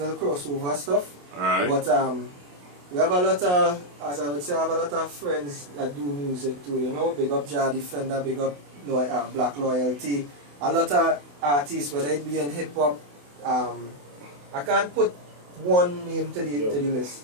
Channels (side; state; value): left; late; 28 ms